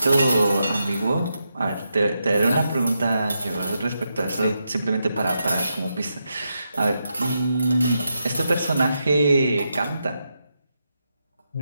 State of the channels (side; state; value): both; inverted; correlation -0.85